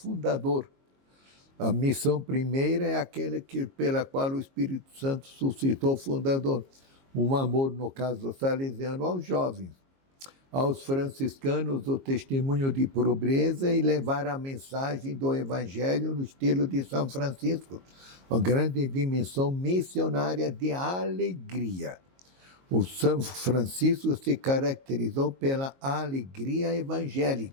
A missão primeira é aquela pela qual o Espírito Santo suscitou o fundador. Um amor, no caso salesiano, aos jovens. Aos franciscanos, o testemunho de pobreza e levar a mensagem do Evangelho no estilo de São Francisco. Uma grande dimensão missionária de alegria. O São Francisco se caracterizou pela alegria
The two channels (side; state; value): left; late; 22 ms